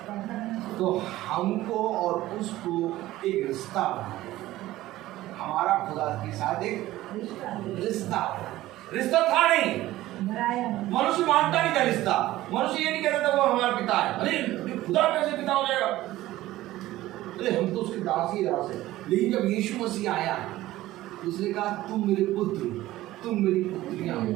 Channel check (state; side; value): quieter; left; 16.0 dB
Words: तो हमको और उसको एक रिश्ता बनाया। हमारा खुदा के साथ एक रिश्ता था नहीं। मनुष्य मानता नहीं था रिश्ता। मनुष्य ये नहीं कहता था वो हमारा पिता है। अरे खुदा कैसे पिता हो जाएगा? अरे हम तो उसके दास ही दास है। लेकिन जब यीशु मसीह आया, उसने कहा तुम मेरे पुत्र, तुम मेरी पुत्रियां हो।